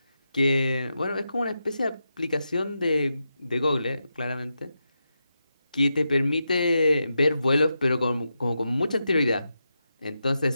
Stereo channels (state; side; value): inverted; both; correlation -0.88